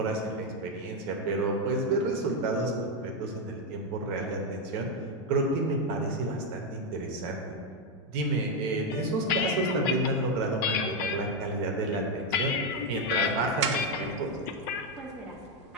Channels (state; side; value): normal; both; correlation 0.04